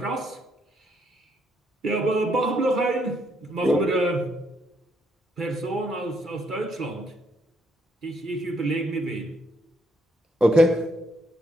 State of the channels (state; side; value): normal; both; correlation 0.73